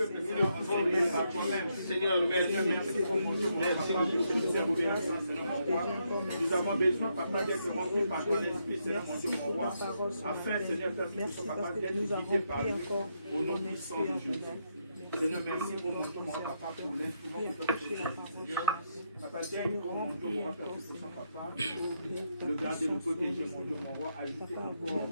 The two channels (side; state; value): both; inverted; correlation -0.78